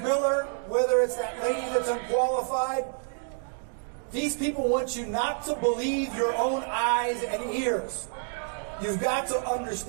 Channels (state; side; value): silent; left; digital silence